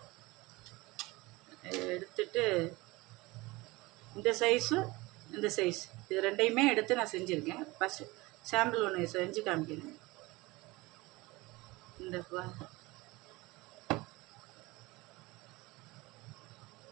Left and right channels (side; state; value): left; quieter; 22.1 dB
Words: எடுத்துட்டு இந்த சைஸும் இந்த சைஸ் இது ரெண்டையுமே எடுத்து நான் செஞ்சுருக்கேன். ஃபஸ்ட்டு சாம்பிள் ஒன்று செஞ்சு காமிக்கிறேன். இந்த